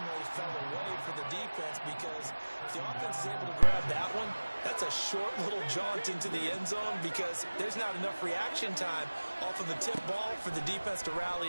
fell away for the defense, because if the offense is able to grab that one, that's a short little jaunt into the end zone because there's not enough reaction time off of the tip ball for the defense to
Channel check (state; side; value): inverted; both; correlation -1.00